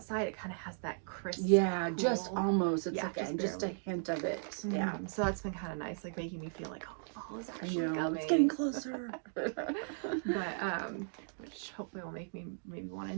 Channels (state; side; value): silent; left; digital silence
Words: it kind of has that crisp. Yeah, cool. just almost. It's just a barely. hint of it. Mm-hmm. Yeah. So that's been kind of nice, like making me feel like, oh, fall is actually coming. It's getting closer. But which hopefully will make me maybe want to